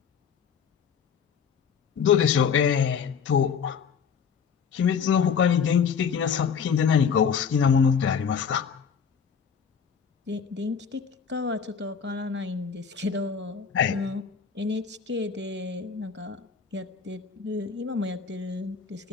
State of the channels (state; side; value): quieter; right; 6.7 dB